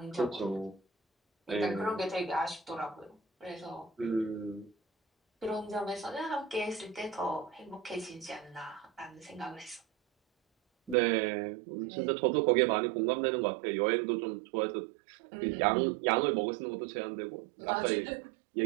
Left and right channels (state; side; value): drops out; left; at 11.0 s